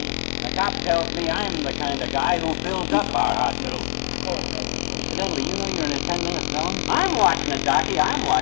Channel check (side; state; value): right; silent; digital silence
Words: And the cop tells me I'm the kind of guy who fills up our hospital. Incidentally, you know you're in a 10-minute zone? I'm watching it, Docky. I'm